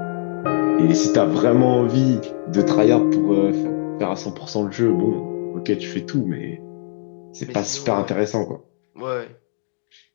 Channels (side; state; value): right; silent; digital silence